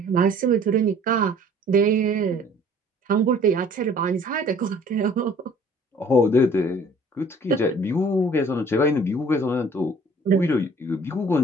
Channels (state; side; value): normal; both; correlation 0.53